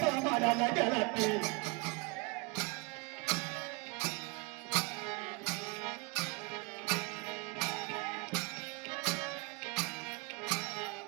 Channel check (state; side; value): quieter; left; 28.4 dB